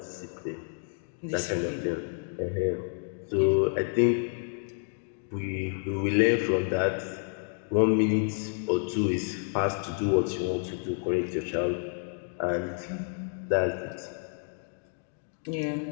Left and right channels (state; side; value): silent; right; 58 dB below the other